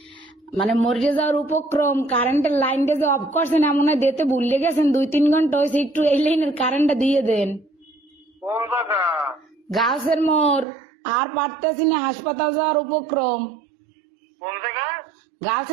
মানে মরে যাওয়ার উপক্রম, কারেন্টের লাইনটা যে অফ করছেন এমন হয় দিতে ভুলে গেছেন, 2-3 ঘন্টা হয়েছে, একটু এই লাইনের কারেন্টটা দিয়ে দেন। কোন জায়গা? গাছের মোড়, আর পারতেছি না, হাসপাতাল যাওয়ার উপক্রম। কোন জায়গা? গার্লস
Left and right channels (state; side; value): drops out; left; at 10.7 s